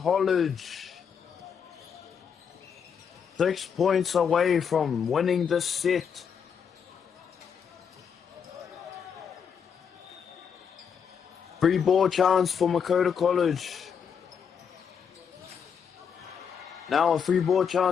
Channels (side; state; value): right; quieter; 7.1 dB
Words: 6 points away from winning this set. Free ball chance for Makota College. Now a free ball